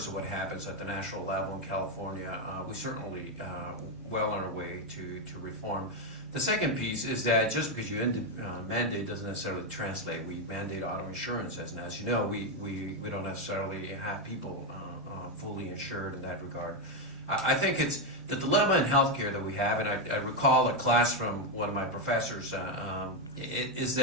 of what happens at the national level in California, we certainly well on our way to reform. The second piece is that just because you mandate doesn't necessarily translate. We mandate auto insurance, and as you know, we don't necessarily have people fully insured in that regard. I think it's the dilemma in healthcare that we have, and I recall a class from one of my professors, is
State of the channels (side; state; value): left; noise; hum, 28 dB below the sound